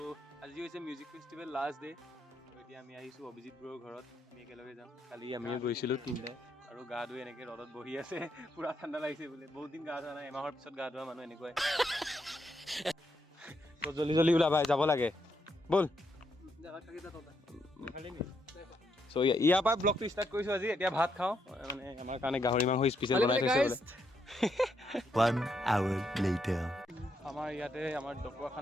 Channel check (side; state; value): both; normal; correlation 0.78